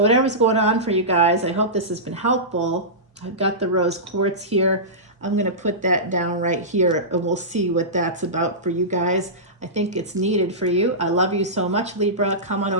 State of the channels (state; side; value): normal; both; correlation -0.17